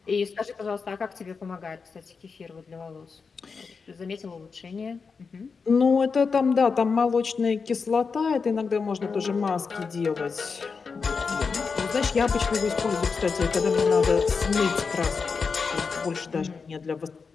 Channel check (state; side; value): quieter; right; 5.1 dB